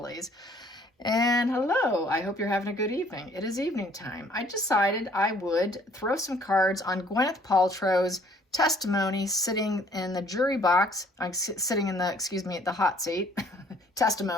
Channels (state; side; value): normal; both; correlation 0.59